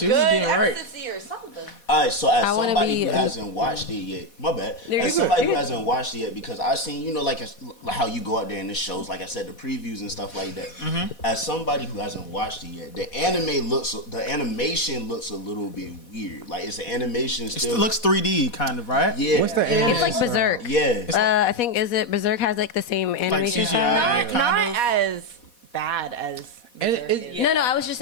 was getting right. Or something. All right, so as somebody who hasn't watched it yet, my bad. As somebody who hasn't watched it yet, because I've seen, like how you go out there in the shows, like I said, the previews and stuff like that. Mm-hmm. As somebody who hasn't watched it yet, the animation looks a little bit weird. Like, it's the animation still. It looks 3D, kind of, right? Yeah. What's the animation? It's like Berserk. Yeah. I think Berserk has like the same animation like style. CGI, Not as bad as. No, I was just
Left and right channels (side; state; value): right; late; 4.1 ms